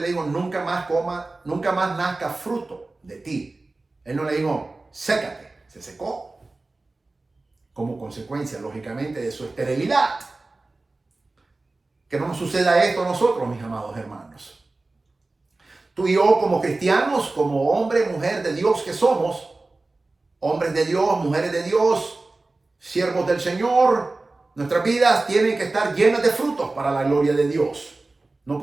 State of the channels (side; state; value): left; quieter; 3.2 dB